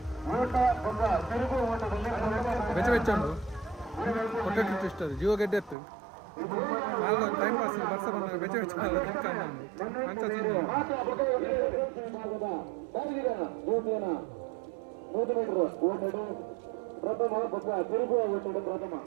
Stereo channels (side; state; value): left; drops out; at 5.8 s